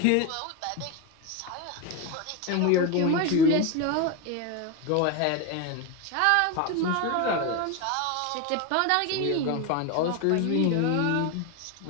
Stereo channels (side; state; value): both; different; correlation 0.02